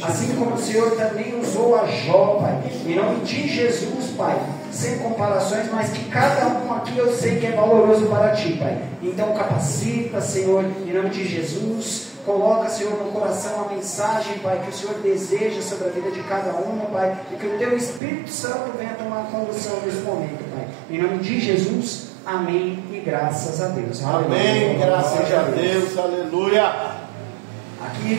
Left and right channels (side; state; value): left; drops out; at 18.0 s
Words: assim como o Senhor também usou a Jó, Pai, em nome de Jesus, Pai, sem comparações, mas que cada um aqui eu sei que é valoroso para Ti, Pai. Então capacita, Senhor, em nome de Jesus. Coloca, Senhor, no coração a mensagem, Pai, que o Senhor deseja sobre a vida de cada um, Pai, e que o Teu Espírito Santo venha tomar condução nesse momento, Pai. Em nome de Jesus, amém e graças a Deus. Amém, Aleluia. graças a Deus, aleluia.